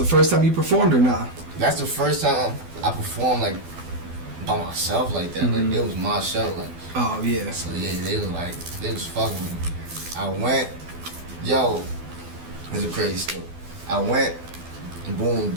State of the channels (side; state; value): left; late; 12 ms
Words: first time you performed or not? That's the first time I performed like by myself like that. Like it was my show. Like, oh yeah. So yeah, they was fucking with me. I went, it's a crazy story. I went, and boom,